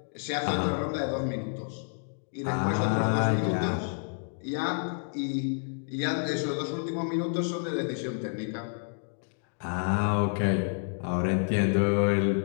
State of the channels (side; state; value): right; silent; digital silence